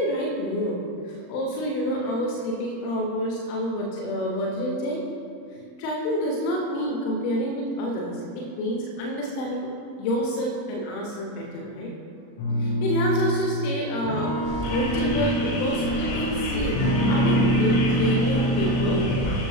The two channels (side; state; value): right; late; 39 ms